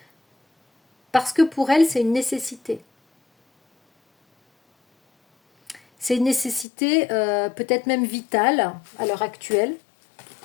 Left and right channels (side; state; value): right; drops out; at 6.7 s